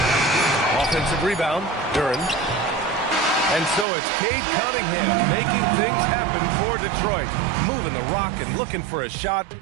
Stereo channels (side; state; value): left; drops out; at 3.9 s